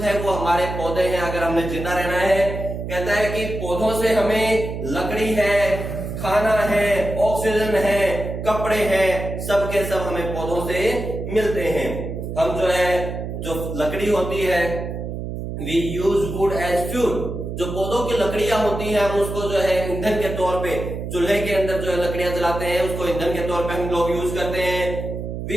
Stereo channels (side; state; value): right; noise; hum, 6 dB below the sound